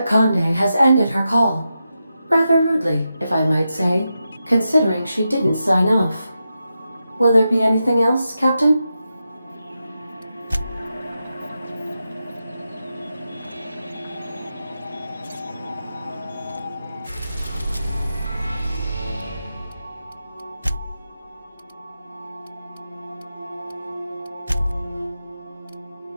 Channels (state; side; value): inverted; both; correlation -0.88